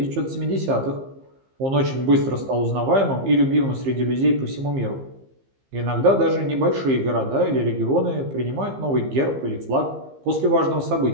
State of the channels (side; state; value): left; late; 15 ms